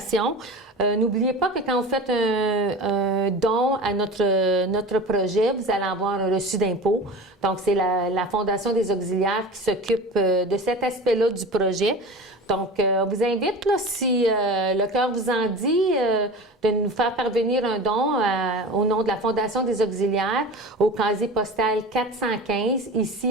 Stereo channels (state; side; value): normal; both; correlation 0.34